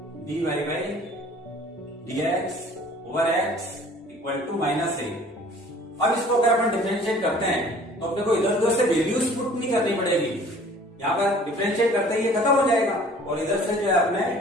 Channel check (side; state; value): both; normal; correlation 0.51